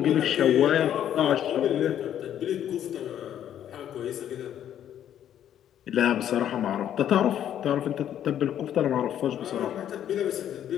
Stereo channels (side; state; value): right; quieter; 10.5 dB